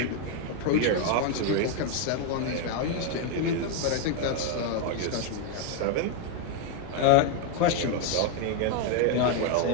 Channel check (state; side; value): different; both; correlation 0.01